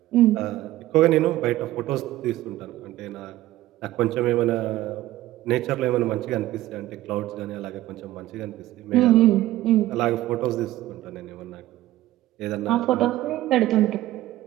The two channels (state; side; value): quieter; left; 15.6 dB